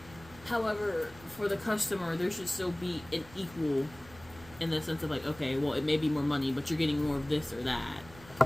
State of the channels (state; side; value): noise; right; rumble, 21 dB below the sound